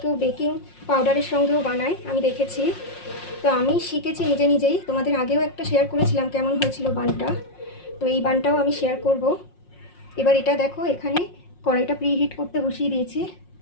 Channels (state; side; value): late; right; 5.6 ms